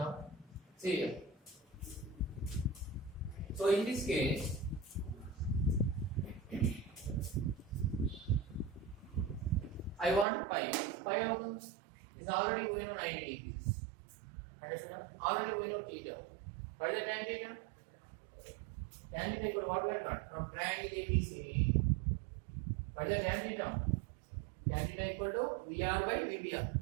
See here. So in this case, I want pi. Pi is already we know 90 degrees. Understood? Already we know theta. What is the tan theta? Tan theta equal to what we have got? From triangle ABC. What is the tan theta? Tan theta equal to VR by VBR.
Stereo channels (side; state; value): left; drops out; at 10.2 s